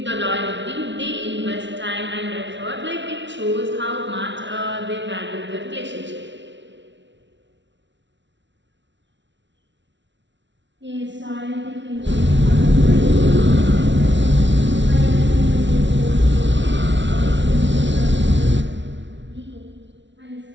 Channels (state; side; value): late; left; 0.53 ms